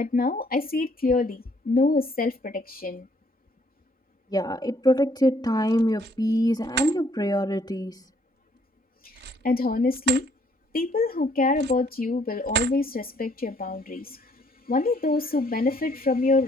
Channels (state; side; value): normal; both; correlation 0.65